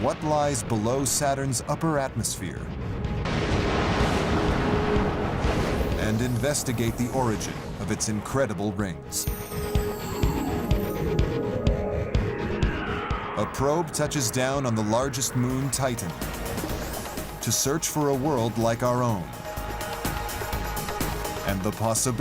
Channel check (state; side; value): identical; both; correlation 1.00